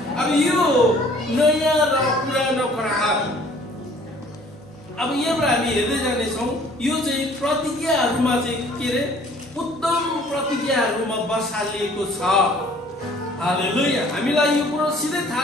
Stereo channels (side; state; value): both; normal; correlation 0.55